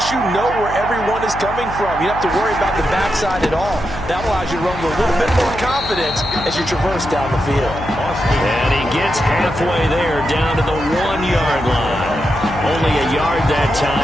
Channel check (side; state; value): left; noise; hum, 11 dB below the sound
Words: you know where everyone is coming from. You don't have to worry about the backside at all. That allows you to run with a little bit more confidence as you traverse down the field. And he gets halfway there, down to the 1-yard line. Only a yard that